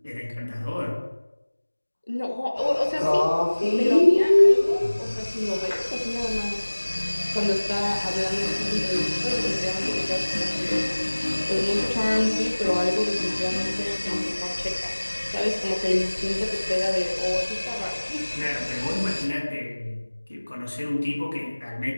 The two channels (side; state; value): both; inverted; correlation -1.00